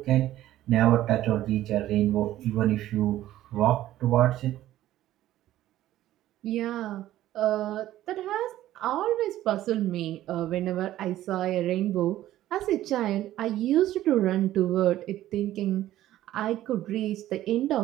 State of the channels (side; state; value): left; quieter; 13.9 dB